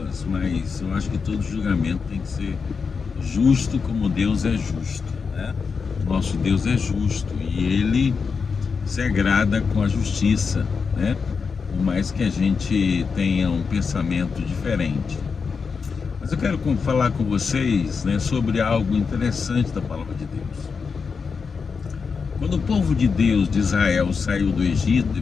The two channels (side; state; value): right; quieter; 5.4 dB